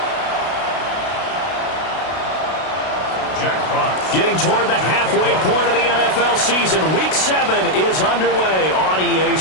Getting toward the halfway point of the NFL season, Week 7 is underway on EA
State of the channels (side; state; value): right; late; 32 ms